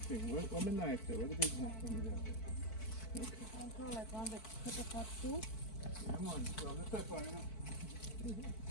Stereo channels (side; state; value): right; late; 4.5 ms